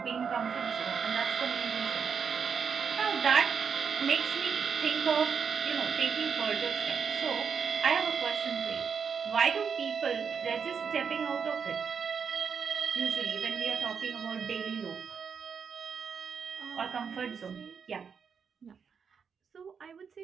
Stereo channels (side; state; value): left; quieter; 6.4 dB